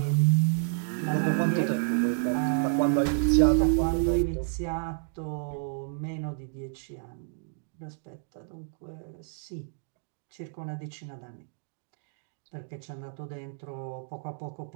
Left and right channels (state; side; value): silent; left; digital silence